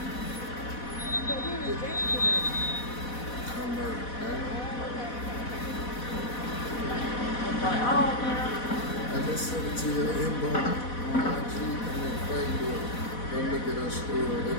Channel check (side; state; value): right; late; 4.1 ms